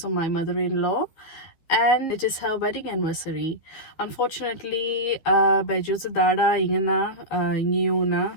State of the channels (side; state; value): right; late; 12 ms